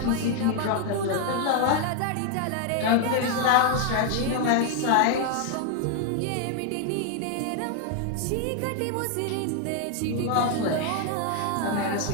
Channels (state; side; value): different; both; correlation 0.00